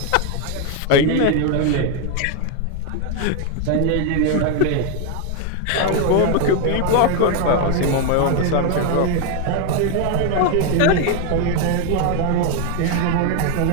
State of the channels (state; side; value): different; both; correlation 0.01